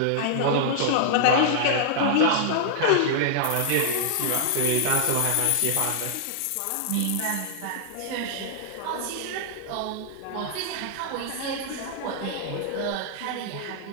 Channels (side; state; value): both; different; correlation -0.01